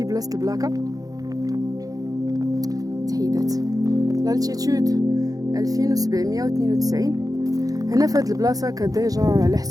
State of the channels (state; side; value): late; left; 0.17 ms